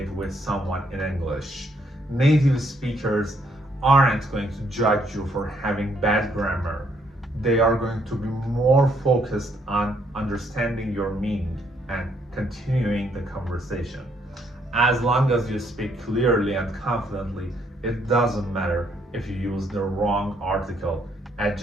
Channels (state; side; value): normal; both; correlation 0.70